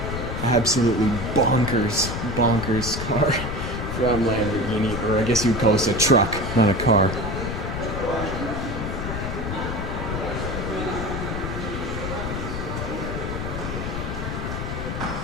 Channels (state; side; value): noise; left; rumble, 4 dB below the sound